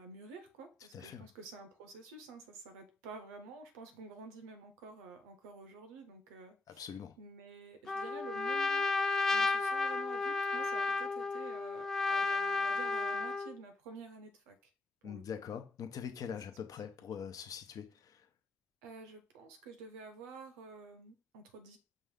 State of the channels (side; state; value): right; quieter; 3.0 dB